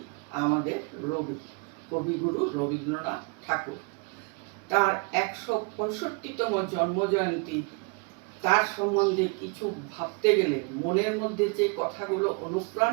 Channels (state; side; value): quieter; left; 33.4 dB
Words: আমাদের কবিগুরু রবীন্দ্রনাথ ঠাকুর। তার 165তম জন্মজয়ন্তী, তার সম্বন্ধে কিছু ভাবতে গেলে মনের মধ্যে যে কথাগুলো